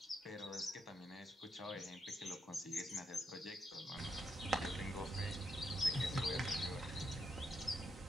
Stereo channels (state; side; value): normal; both; correlation 0.80